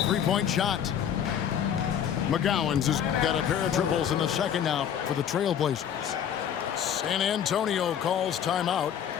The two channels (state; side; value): quieter; right; 9.0 dB